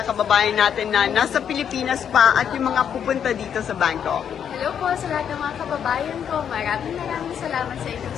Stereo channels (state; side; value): quieter; right; 8.4 dB